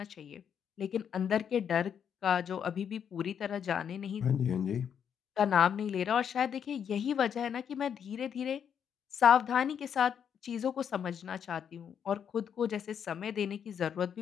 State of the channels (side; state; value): right; quieter; 8.0 dB